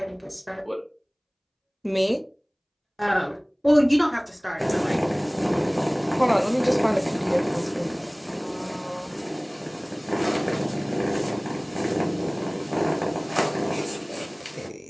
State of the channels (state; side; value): identical; both; correlation 1.00